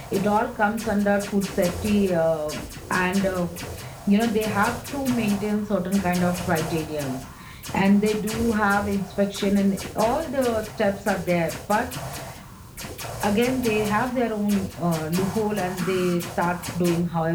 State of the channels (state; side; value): identical; both; correlation 1.00